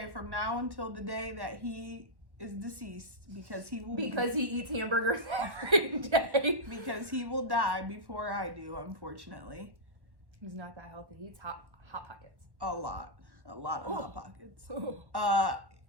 from now until the day that he is deceased, because he eats hamburgers every day. because he will die before I do, unfortunately. He's not that healthy. He eats hot pockets. A lot of Hot Pockets. Oh.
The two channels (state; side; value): late; left; 1.1 ms